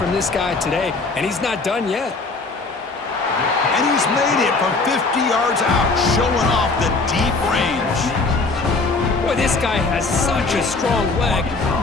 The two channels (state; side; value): quieter; right; 3.8 dB